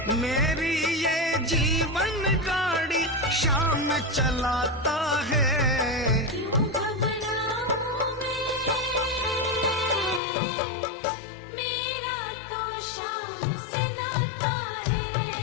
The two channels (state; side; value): drops out; right; at 10.2 s